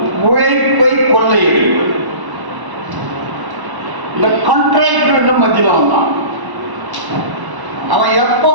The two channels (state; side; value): late; left; 1.1 ms